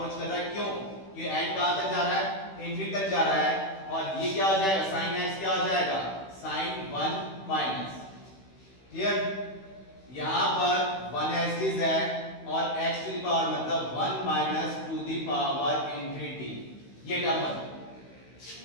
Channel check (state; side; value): late; right; 16 ms